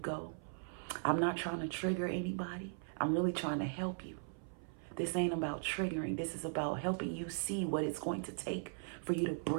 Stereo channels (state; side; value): silent; left; 52 dB below the other